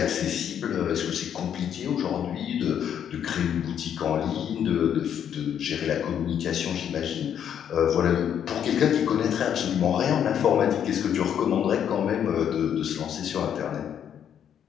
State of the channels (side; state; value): right; quieter; 9.1 dB